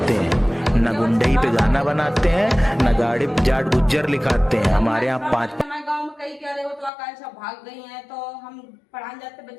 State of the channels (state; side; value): drops out; right; at 6.9 s